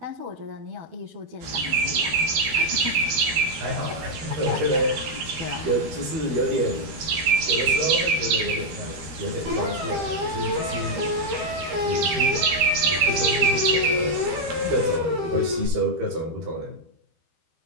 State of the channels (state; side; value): late; left; 12 ms